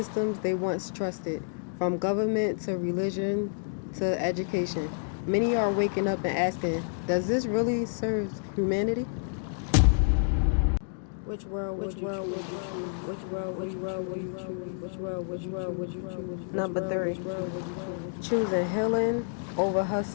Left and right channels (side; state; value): right; silent; digital silence